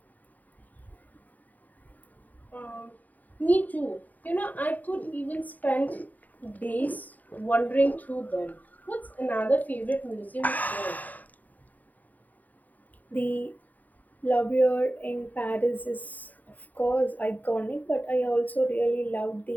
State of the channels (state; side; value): late; right; 0.081 ms